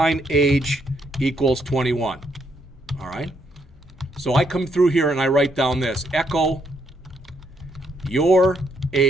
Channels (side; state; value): both; normal; correlation 0.74